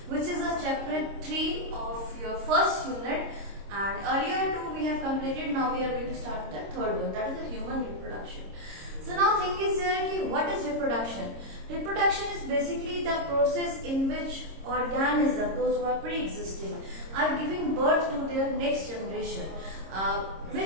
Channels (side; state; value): left; late; 26 ms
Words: which is a chapter 3 of your first unit. And earlier two we have completed. Now we are going to start with the third one, that is the human reproduction. So now thing is there ki what is reproduction? Reproduction is basically the process in which organisms, those who are pre-existing, are giving birth to their next generation.